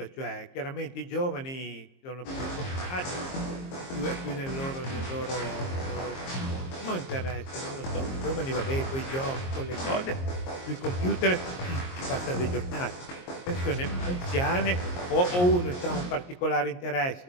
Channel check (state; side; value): late; right; 22 ms